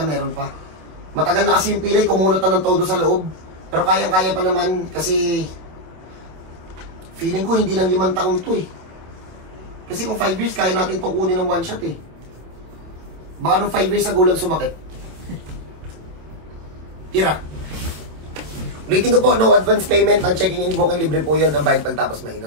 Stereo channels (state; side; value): late; left; 27 ms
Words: pa. Matagal na kasi yung pilay, kumunot na ng todo sa loob. Pero kayang-kaya pa naman kasi feeling ko hindi lang 5 taon to eh. Kasi kung 5 years, kaya natin itong kunin ng one shot eh. Baka nung 5 years ago lang sumakit. Tira. Ulitin ko po, no advance payment. Ang checking in booking libre po yun. Ang bayad pagtapos